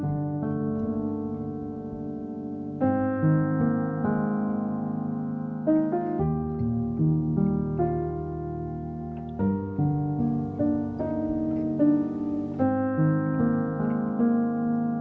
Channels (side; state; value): both; identical; correlation 1.00